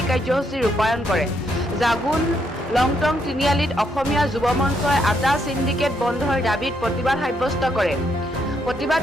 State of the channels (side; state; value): both; normal; correlation 0.75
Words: কাৰ্যসূচী ৰূপায়ণ কৰে। জাগুন লংটং তিনিআলিত অসমীয়া যুৱ মঞ্চই আটা সিন্ডিকেট বন্ধৰ দাবীত প্ৰতিবাদ সাব্যস্ত কৰে।